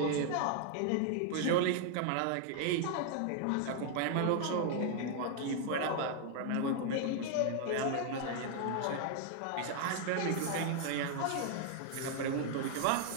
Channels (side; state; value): both; different; correlation 0.00